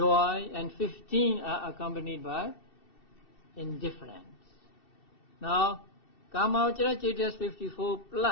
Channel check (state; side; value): late; right; 2.7 ms